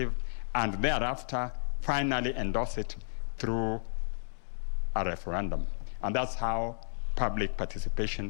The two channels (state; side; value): silent; right; digital silence